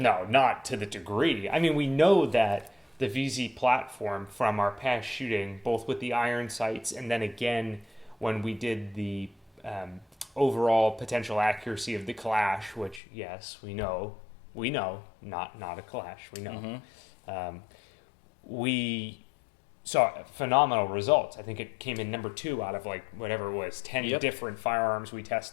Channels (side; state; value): right; drops out; at 13.0 s